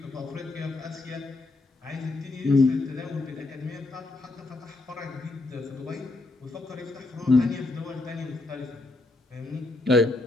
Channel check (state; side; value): quieter; right; 3.1 dB